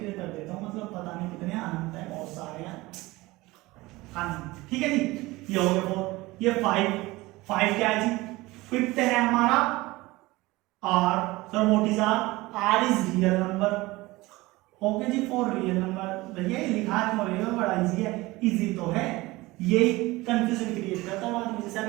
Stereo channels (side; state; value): left; quieter; 20.5 dB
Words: कर देता हूँ, मतलब पता नहीं कितने अनंत है, बहुत सारे हैं अनंत। ठीक है जी, ये हो गया 4। ये 5 क्या है जी? 5th है हमारा r। Sir what is r is real number. Okay जी, फॉर रियल नंबर। भैया ये लिखा क्यों रहेगा? बड़ा इजी है, इजी तो है, ये कंफ्यूजन क्रिएट करता है बाद में। जैसे